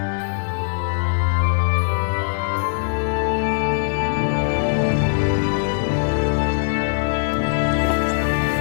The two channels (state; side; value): silent; right; digital silence